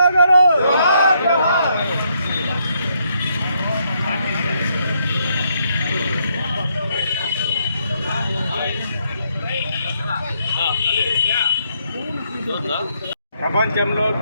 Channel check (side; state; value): both; inverted; correlation -0.74